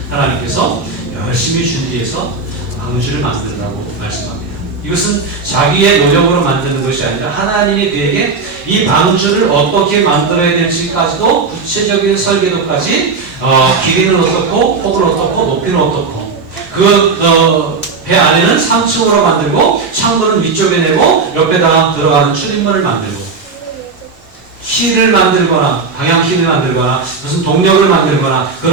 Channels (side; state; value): left; quieter; 4.5 dB